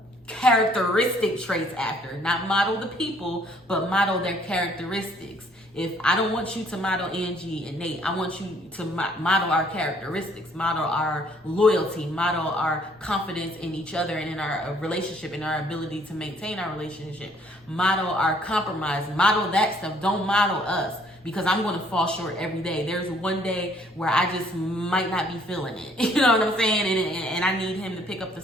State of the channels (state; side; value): normal; both; correlation 0.62